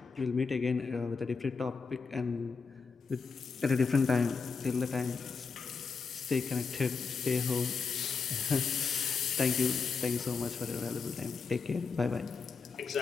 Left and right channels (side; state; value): right; quieter; 5.1 dB